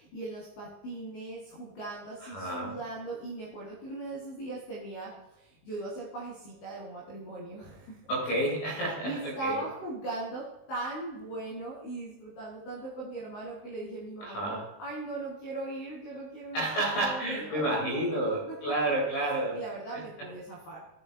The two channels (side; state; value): right; late; 19 ms